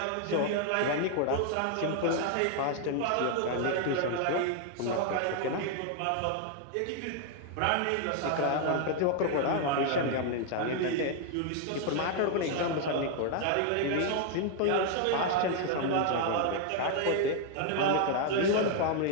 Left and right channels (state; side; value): different; both; correlation 0.00